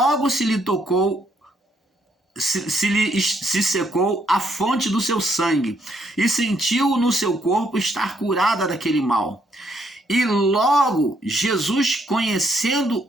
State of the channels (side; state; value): both; normal; correlation 0.72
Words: se lhe tocou, se secou a fonte do seu sangue, e sentiu no seu corpo estar curada daquele mal. E logo Jesus, conhecendo